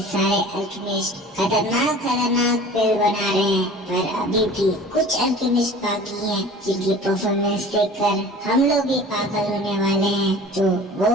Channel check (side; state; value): both; normal; correlation 0.43